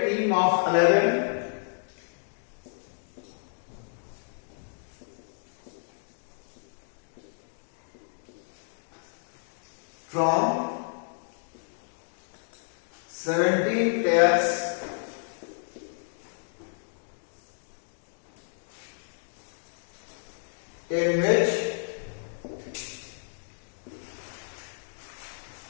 team of 11 from 17 players in which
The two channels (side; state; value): right; silent; digital silence